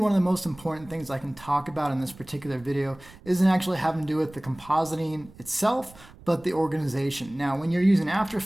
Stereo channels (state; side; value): noise; right; rumble, 22 dB below the sound